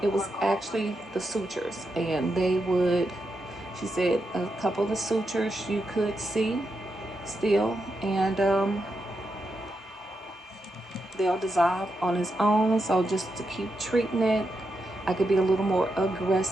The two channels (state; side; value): normal; both; correlation 0.85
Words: It was actually the sutures, and they would, she said, a couple of the sutures you could see still, and they'll dissolve on its own. So just to keep treating it, I could be a little more